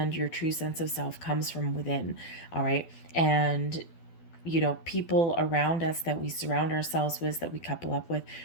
your true sense of self comes from within. All right. And people around us that we surround ourselves with, that we couple up with,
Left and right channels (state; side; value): late; right; 12 ms